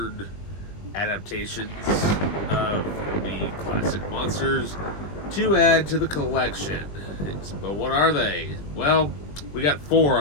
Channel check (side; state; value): right; late; 20 ms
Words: adaptations of the classic monsters to add to the collection. But what are they? Well, we got 4